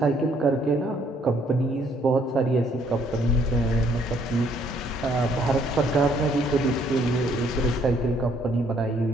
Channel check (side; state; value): both; normal; correlation 0.66